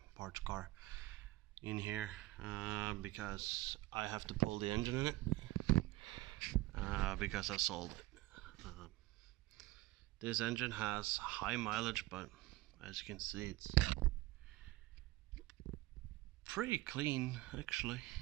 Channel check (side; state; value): left; quieter; 18.6 dB